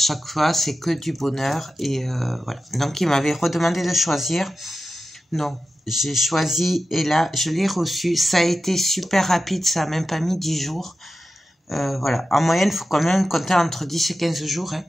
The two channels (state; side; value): normal; both; correlation 0.93